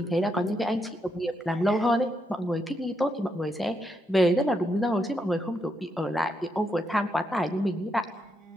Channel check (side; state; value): both; normal; correlation 0.80